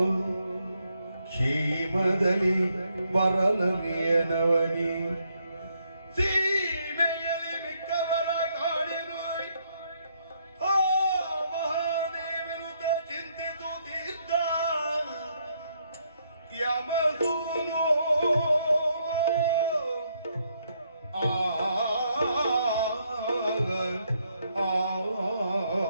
ಕ್ಷೇಮದಲ್ಲಿ ಬರಲರಿಯ ನವನಿ ಸೀಮೆಯಲ್ಲಿ ಮಿಕ್ಕವರ ಕಾಣೆನೋ ಆ ಮಹಾದೇವರುತ ಚಿಂತಿಸುತ್ತಿದ್ದ ಯಮದೂನು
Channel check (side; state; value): both; inverted; correlation -0.74